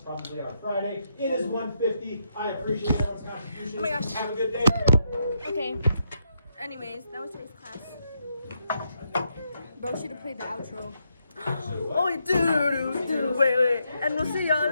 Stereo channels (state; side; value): inverted; both; correlation -0.79